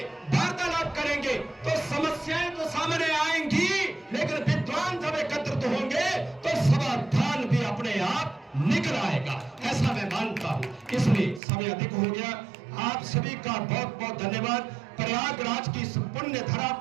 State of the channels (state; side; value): drops out; left; at 11.4 s